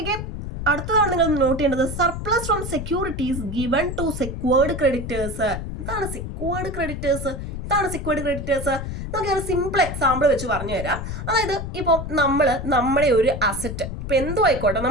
അടുത്തതാണ് നിങ്ങൾ നോട്ട് ചെയ്യേണ്ടത്, surplus from securities given to secured creditors. എന്താണ് സെക്യൂർഡ് ക്രെഡിറ്റേഴ്സ്? നമുക്ക് ഒരു സിമ്പിൾ എക്സാമ്പിൾ വെച്ച് പറഞ്ഞു തരാം. അതായത് ഇപ്പോൾ നമ്മുടെ ഒരു അസറ്റ്, ഇപ്പോൾ എന്തോ ആയിക്കോട്ടെ,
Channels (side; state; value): left; noise; rumble, 6 dB below the sound